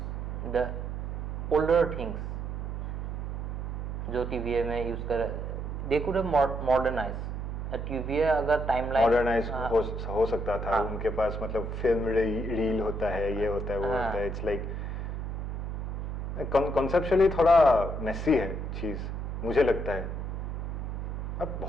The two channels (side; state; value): right; noise; hum, 4 dB below the sound